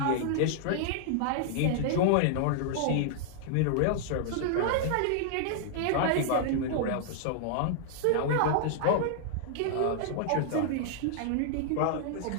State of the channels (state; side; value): different; both; correlation -0.01